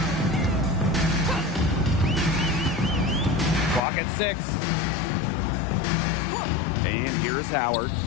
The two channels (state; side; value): drops out; right; at 3.8 s